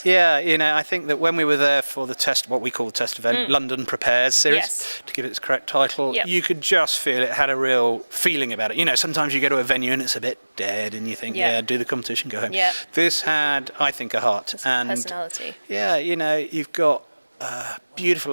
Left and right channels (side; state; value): both; inverted; correlation -1.00